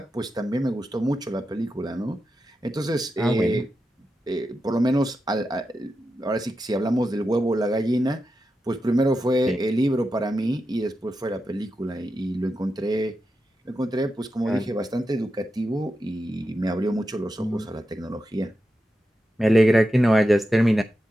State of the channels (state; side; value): normal; both; correlation 0.89